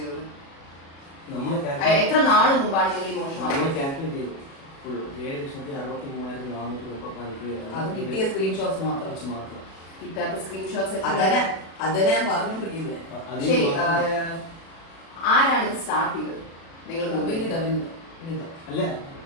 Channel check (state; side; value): late; right; 36 ms